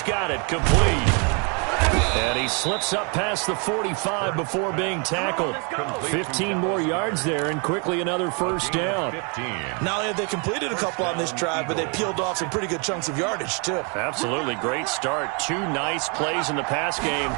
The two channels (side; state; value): left; quieter; 35.4 dB